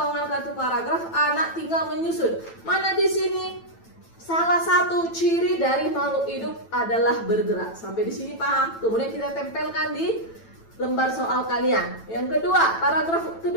kartu paragraf, anak tinggal menyusun. Mana di sini? Salah satu ciri dari makhluk hidup adalah bergerak. Sampai di sini paham? Kemudian kita tempelkan di lembar soal kalian. Yang kedua, paragraf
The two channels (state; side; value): late; right; 9.0 ms